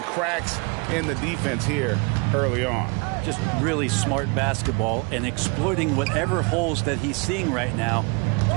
cracks in the defense here early on. Just really smart basketball and exploiting whatever holes that he's seeing right now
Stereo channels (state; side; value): quieter; left; 30.6 dB